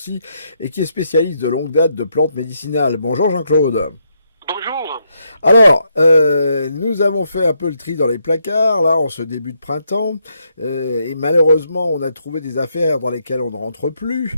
et qui est spécialiste de longue date de plantes médicinales. Bonjour Jean-Claude. Bonjour. Alors, nous avons fait un peu le tri dans les placards, là, en ce début de printemps, et malheureusement, on a trouvé des affaires dans lesquelles on ne rentre plus.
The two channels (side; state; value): both; inverted; correlation -0.77